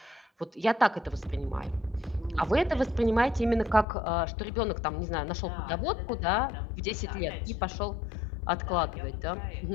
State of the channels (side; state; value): right; drops out; at 3.9 s